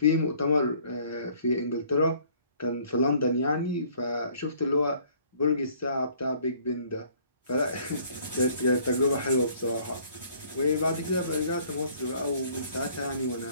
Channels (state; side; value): inverted; both; correlation -0.58